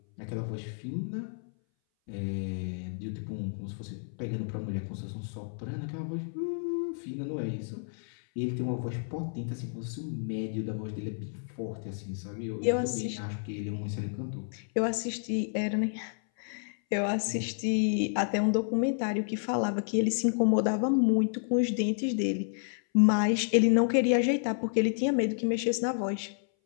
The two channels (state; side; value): silent; right; 58 dB below the other